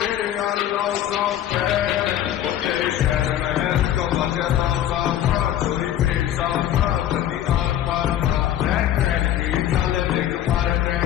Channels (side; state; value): right; quieter; 11.6 dB